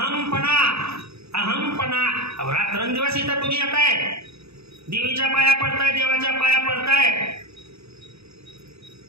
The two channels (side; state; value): left; late; 0.79 ms